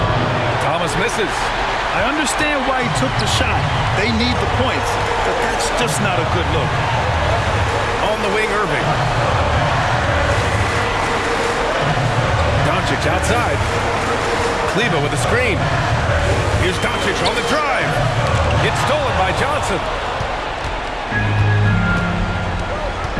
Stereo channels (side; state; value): both; identical; correlation 1.00